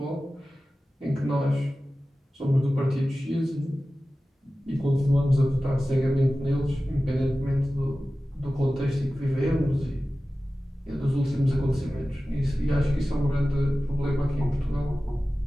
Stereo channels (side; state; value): both; normal; correlation 0.95